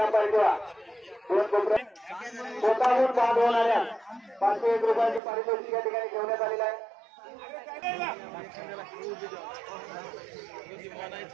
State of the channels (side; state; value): left; drops out; at 5.2 s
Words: किंवा 2 कोपरे स्वतःहून बाद होणाऱ्या 501 रुपयाची पारितोषिक या ठिकाणी ठेवण्यात आलेलं आहे.